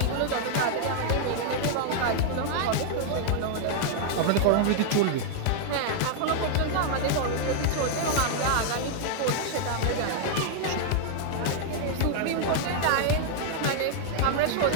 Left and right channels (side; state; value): both; different; correlation 0.00